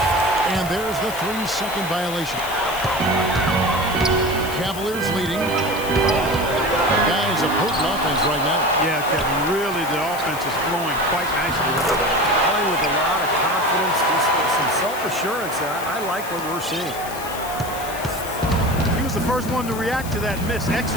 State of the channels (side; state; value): left; noise; hiss, 12 dB below the sound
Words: And there's the 3-second violation. Cavaliers leading. Guys, a potent offense right now. Yeah, Kevin, really the offense is flowing quite nicely. Playing with a lot of confidence, just some self-assurance. I like what we're seeing. He was the first one to react to that miss.